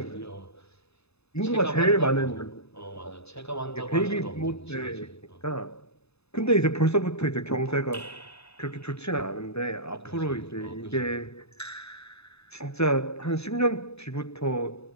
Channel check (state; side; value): late; right; 0.79 ms